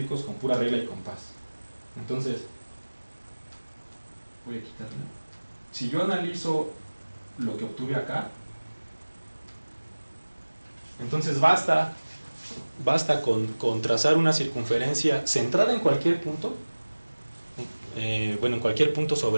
con pura regla y compás. Entonces, voy a quitarla. Si yo analizo lo que obtuve acá, entonces basta con trazar una circunferencia centrada en cualquier punto, en cualquier punto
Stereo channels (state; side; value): inverted; both; correlation -1.00